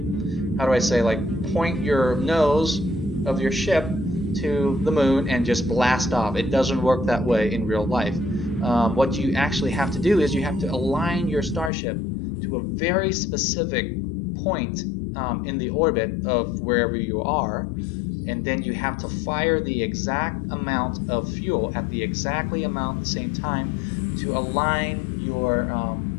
point your nose of your ship to the moon and just blast off. It doesn't work that way in real life. What you actually have to do is you have to align your starship to a very specific point in the orbit of wherever you are, and then you have to fire the exact amount of fuel at the same time to align your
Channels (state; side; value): drops out; right; at 11.7 s